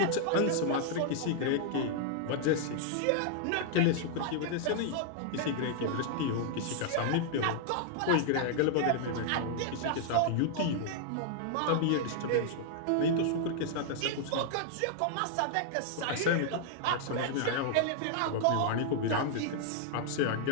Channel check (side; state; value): both; different; correlation -0.01